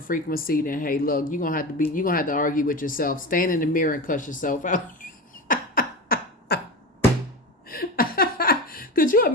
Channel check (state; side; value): normal; both; correlation 0.24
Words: frequency, then hey, look, you're gonna have to argue with yourself. Stand in the mirror and cuss yourself out. Could you